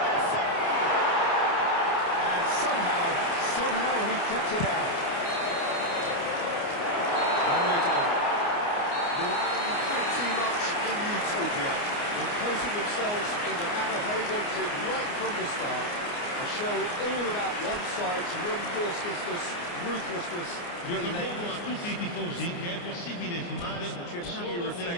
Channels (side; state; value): right; late; 29 ms